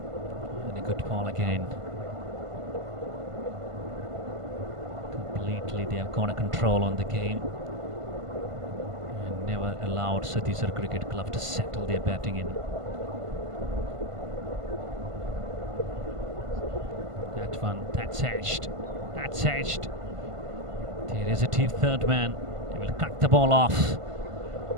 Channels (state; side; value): late; left; 1.5 ms